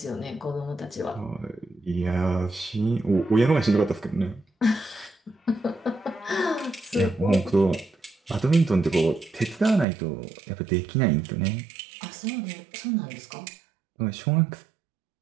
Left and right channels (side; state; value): left; drops out; at 9.9 s